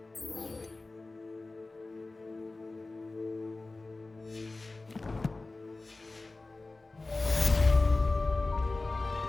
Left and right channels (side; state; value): right; quieter; 3.3 dB